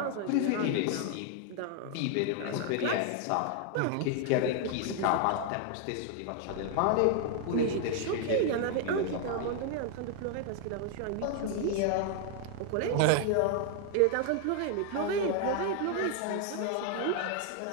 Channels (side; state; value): both; different; correlation 0.00